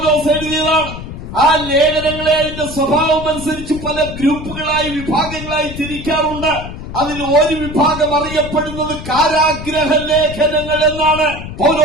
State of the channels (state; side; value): noise; left; rumble, 10 dB below the sound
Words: എഴുതിയതാണ്. ആ ലേഖനങ്ങളെ അതിന്റെ സ്വഭാവം അനുസരിച്ച് പല ഗ്രൂപ്പുകളായി, വിഭാഗങ്ങളായി തിരിക്കാറുണ്ട്. അതിൽ ഒരു വിഭാഗം അറിയപ്പെടുന്നത് കാരാഗ്രഹ ലേഖനങ്ങൾ എന്നാണ്.